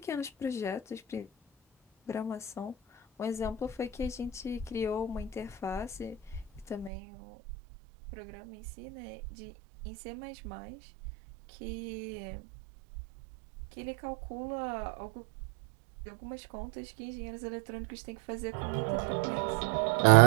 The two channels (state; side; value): drops out; left; at 6.9 s